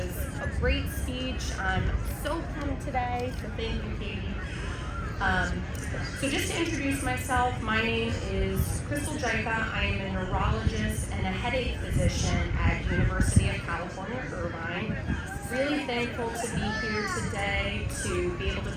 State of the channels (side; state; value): both; identical; correlation 1.00